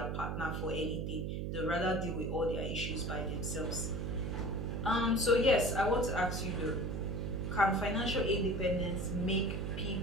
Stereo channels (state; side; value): noise; right; hum, 2 dB below the sound